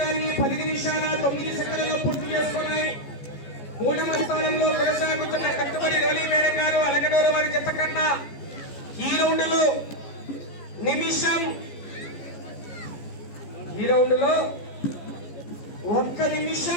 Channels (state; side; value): late; right; 14 ms